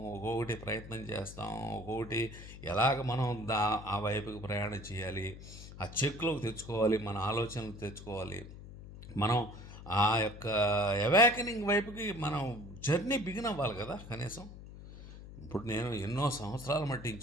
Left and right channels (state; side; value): noise; left; hum, 14 dB below the sound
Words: ఒక్కొక్కటి ప్రయత్నం చేస్తాం, ఒక్కొక్కటి ఎలాగ మనం ఆ వైపుకి ప్రయాణం చేయాలి, ఆ చెక్లోకి తెచ్చుకోవాలి, మన ఆలోచనలు తెచ్చుకోవాలి, మనం ఆ యొక్క అవేకనింగ్ వైపుకి మనం జర్నీ బిగిన్ అవ్వాలి కదా కనీసం. ఇప్పుడు నేను ఎన్నో సంవత్సరాల మట్టి